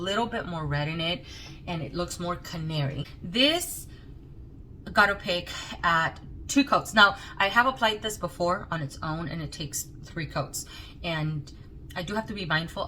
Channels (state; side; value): identical; both; correlation 1.00